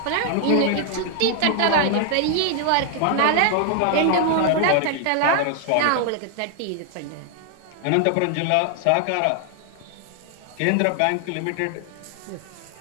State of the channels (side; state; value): both; different; correlation 0.00